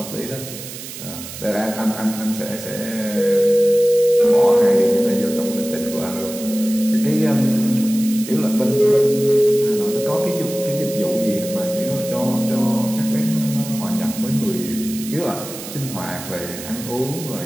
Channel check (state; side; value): noise; right; hiss, 11 dB below the sound